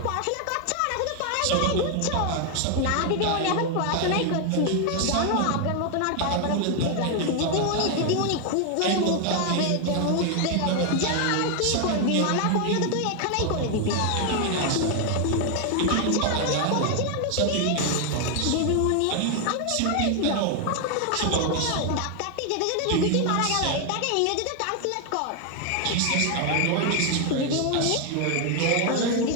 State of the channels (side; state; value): both; different; correlation 0.01